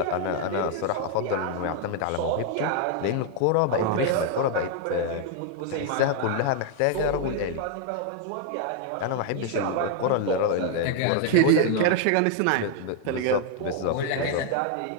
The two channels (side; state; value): both; different; correlation 0.00